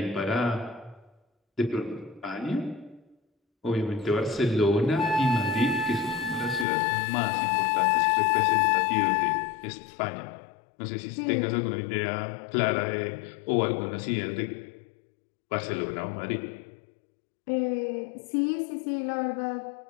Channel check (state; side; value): drops out; right; at 6.7 s